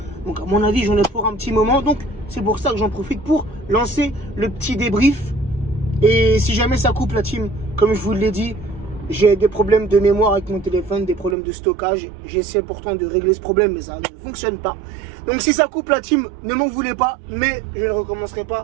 Donc à mon avis j'en ai pour un petit moment, donc c'est pour ça que j'en profite pour lancer le petit débrief. Et si jamais ça coupe la team, comme je vous l'ai dit, j'ai des problèmes de mémoire avec mon téléphone, des problèmes de stockage. J'essaie pourtant de régler ce problème, mais ça ne fonctionne pas. Donc si ça coupe la team, ne m'en voulez pas, mais je ne recommencerai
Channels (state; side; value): drops out; left; at 11.4 s